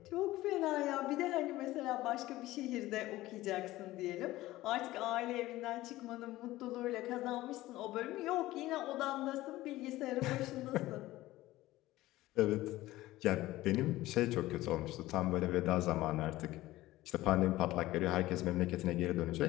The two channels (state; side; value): quieter; right; 16.9 dB